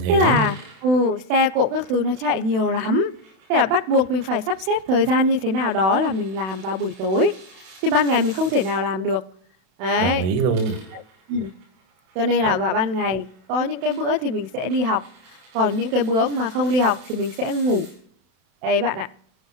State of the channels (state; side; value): late; left; 32 ms